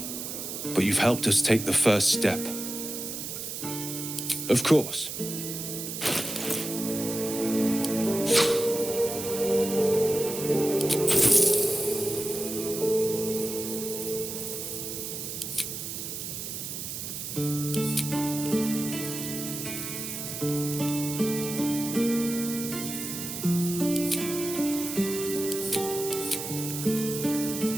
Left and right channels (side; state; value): right; noise; hiss, 6 dB below the sound